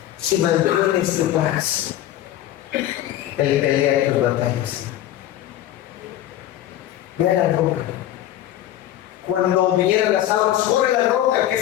Si mantienes tu paz, Él pelea tus batallas. Ve a la roca. Cuando vinieran las aguas, corre a la roca que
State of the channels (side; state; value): right; quieter; 13.0 dB